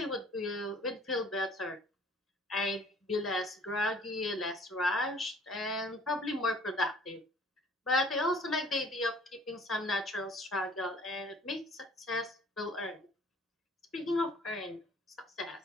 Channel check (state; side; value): normal; both; correlation 0.53